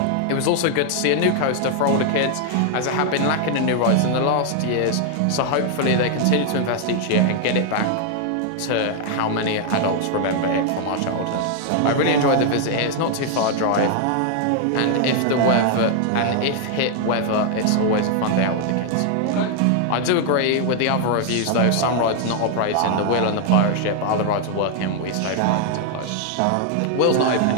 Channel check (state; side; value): different; both; correlation 0.00